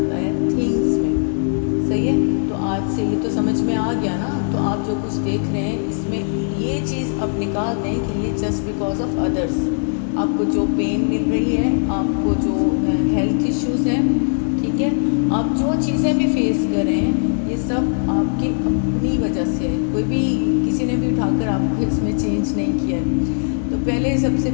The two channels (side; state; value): right; silent; digital silence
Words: है थिंग्स में, सही है। तो आज से ये तो समझ में आ गया ना। तो आप जो कुछ देख रहे हैं इसमें ये चीज़ अब निकाल दें कि ये जस्ट बिकॉज ऑफ अदर्स, आपको जो पेन मिल रही है, आपको जो हेल्थ इश्यूज़ हैं, ठीक है, आप जो चीज़ें भी फेस कर रहे हैं, ये सब आपकी अपनी वजह से है, कोई भी किसी ने भी उठाकर आपको इसमें चेंज नहीं किया है। तो पहले सबसे